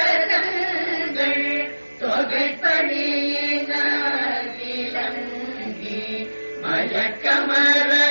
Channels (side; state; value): both; inverted; correlation -1.00